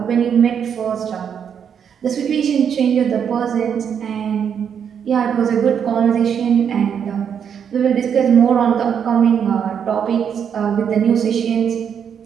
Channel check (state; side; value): quieter; left; 7.8 dB